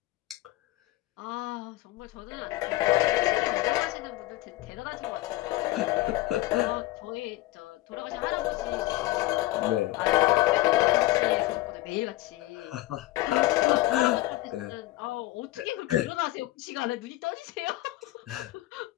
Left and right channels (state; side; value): quieter; right; 17.8 dB